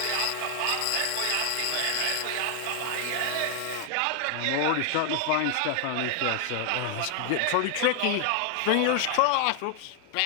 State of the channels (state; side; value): different; both; correlation 0.00